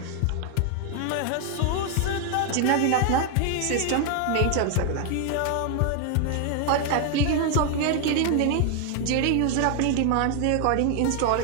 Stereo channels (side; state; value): both; different; correlation 0.00